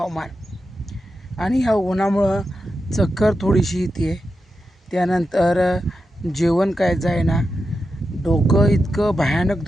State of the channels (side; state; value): both; normal; correlation 0.89